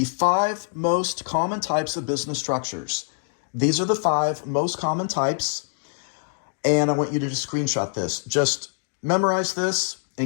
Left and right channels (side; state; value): right; silent; digital silence